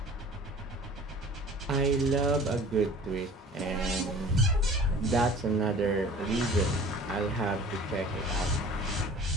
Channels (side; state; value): both; normal; correlation 0.45